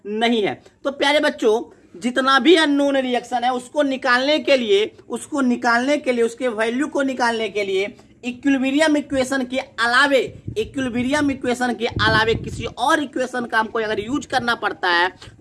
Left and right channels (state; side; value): identical; both; correlation 1.00